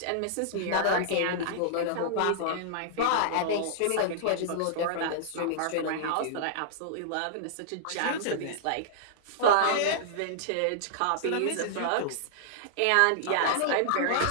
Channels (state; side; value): different; both; correlation -0.01